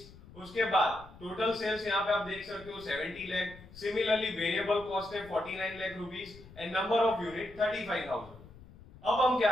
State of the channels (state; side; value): noise; left; rumble, 20 dB below the sound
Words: उसके बाद टोटल सेल्स यहाँ पे आप देख सकते हो 70 लाख. सिमिलरली वेरिएबल कॉस्ट है 49 lakh rupees and number of unit 35,000. अब हम